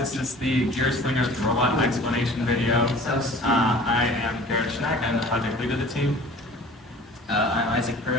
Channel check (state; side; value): normal; both; correlation 0.46